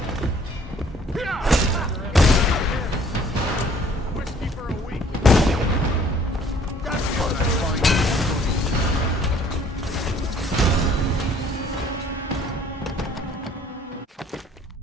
Whiskey for a week. That's what I find.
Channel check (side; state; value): both; normal; correlation 0.57